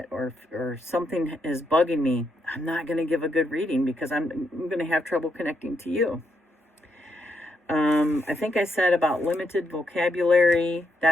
or something is bugging me, I'm not going to give a good reading because I'm going to have trouble connecting to you. I think I said about limited vocabulary.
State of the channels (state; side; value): normal; both; correlation 0.79